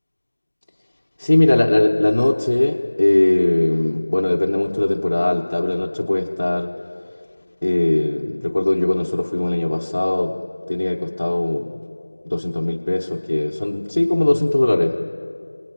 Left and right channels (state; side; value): inverted; both; correlation -1.00